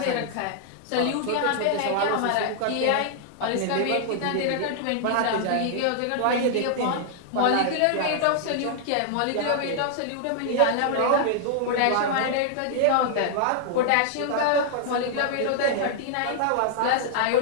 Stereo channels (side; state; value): both; different; correlation -0.01